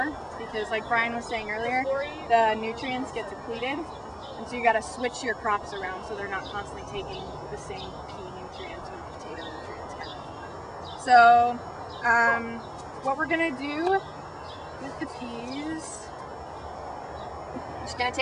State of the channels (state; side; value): identical; both; correlation 1.00